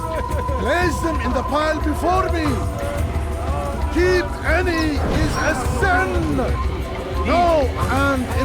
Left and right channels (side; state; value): both; identical; correlation 1.00